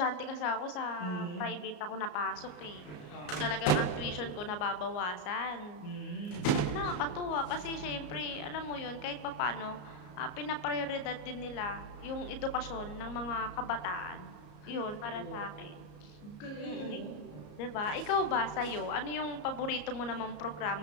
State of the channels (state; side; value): late; right; 34 ms